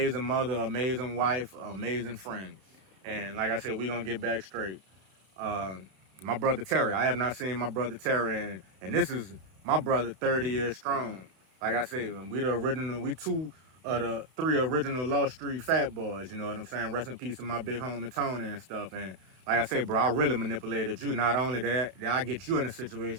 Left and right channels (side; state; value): left; late; 32 ms